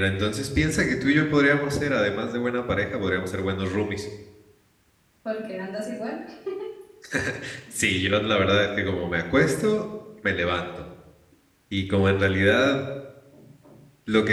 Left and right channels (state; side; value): identical; both; correlation 1.00